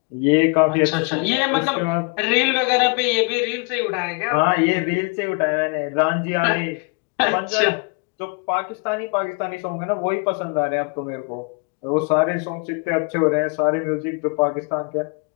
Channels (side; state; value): right; quieter; 32.9 dB